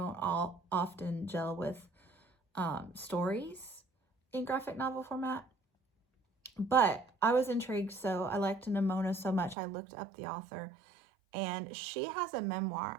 often gel with stories in graphic novel format. But I was intrigued, so I liked Nimona so much, I looked up the author, and she has a memoir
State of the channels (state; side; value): drops out; left; at 9.6 s